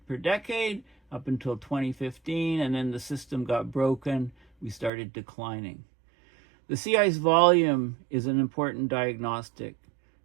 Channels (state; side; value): drops out; left; at 4.9 s